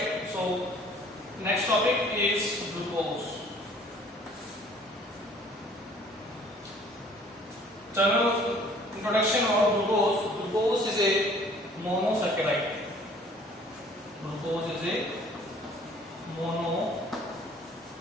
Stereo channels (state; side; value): normal; both; correlation 0.54